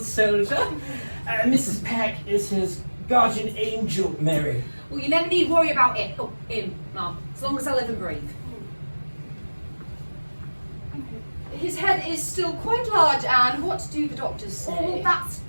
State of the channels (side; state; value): both; inverted; correlation -1.00